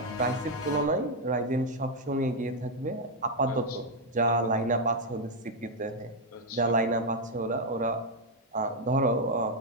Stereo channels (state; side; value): normal; both; correlation 0.00